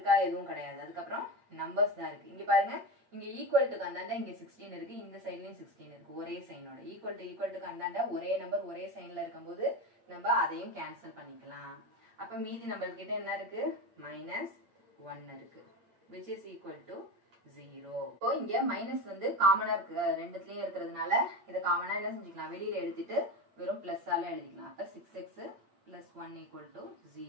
எதுவும் கிடையாது. அதுக்கப்புறம் நம்பர்ஸ் தான் இருக்கு. இங்க பாருங்க, இங்க ஈக்குவல் டுக்கு அந்தாண்ட இங்க 16 இருக்கு, இந்த சைட்லயும் 16 இருக்கு, ஒரே சைனோட. ஈக்குவல் டுக்கு அந்தாண்ட ஒரே நம்பர் ஒரே சைன்ல இருக்கும்போது நம்ம அதையும் கேன்சல் பண்ணிக்கலாம். அப்ப மீதி நம்மளுக்கு கிட்ட என்ன இருக்கு? மைனஸ் 1 இருக்கு, which is equal to 0. இப்போ இங்க மைனஸ் வந்து காமனா இருக்கு, ரெண்டுத்துலயும் இருக்கிறதுனால இதை காமனா என்ன செஞ்சுக்கலாம்? வெளியில எடுத்துட்டு வெறும் பிளஸ்-ஆல எழுதிக்கலாம். அப்ப 6x plus 1 equal to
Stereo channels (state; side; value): late; left; 8.7 ms